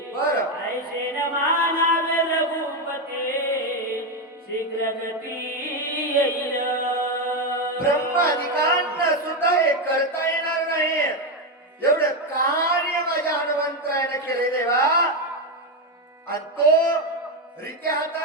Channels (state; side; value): normal; both; correlation 0.08